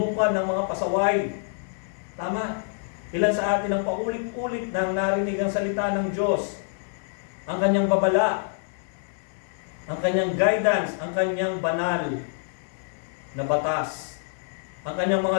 ng mga pasaway. Tama? Ilan sa atin ang paulit-ulit nang narinig ang salita ng Diyos, ang kanyang babala, ang kanyang guidance, ang kanyang banal na batas. ang kanyang mga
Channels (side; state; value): right; silent; 58 dB below the other